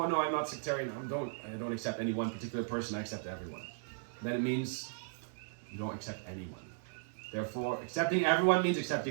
no, I'm not sectarian, I don't accept any one particular person, I accept everyone. Then it means you don't accept anyone. Therefore, accepting everyone means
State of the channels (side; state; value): left; silent; digital silence